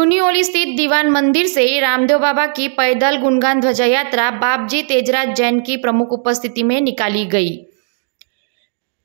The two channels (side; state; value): left; silent; digital silence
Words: स्थित दीवान मंदिर से रामदेव बाबा की पैदल गुणगान ध्वजा यात्रा बापजी तेजराज जैन की प्रमुख उपस्थिति में निकाली गई।